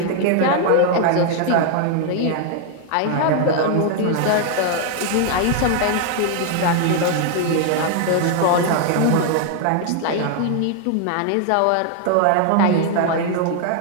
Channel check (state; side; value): different; both; correlation 0.00